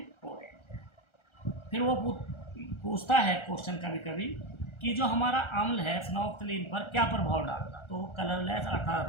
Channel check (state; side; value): late; right; 1.4 ms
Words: ऑरेंज है। फिर वो पूछता है क्वेश्चन कभी कभी कि जो हमारा अम्ल है फिनोफ्थलीन पर क्या प्रभाव डालता, तो वो कलरलेस अर्थात